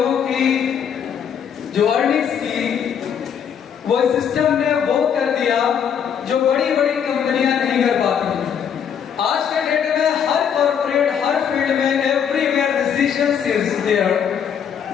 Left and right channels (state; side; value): quieter; right; 8.0 dB